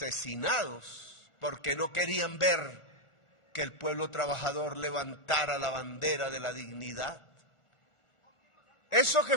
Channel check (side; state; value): right; late; 1.4 ms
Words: porque no querían ver que el pueblo trabajador levantara la bandera de la dignidad. Eso